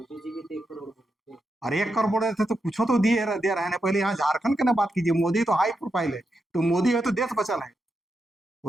जी भी 1 करोड़ बोले थे। अरे 1 करोड़ बोल रहे थे तो कुछ तो दे रहे हैं। पहले यहाँ झारखंड की ना बात कीजिए, मोदी तो हाई प्रोफाइल है, तो मोदी है तो देश बचल है।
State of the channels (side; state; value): both; normal; correlation 0.86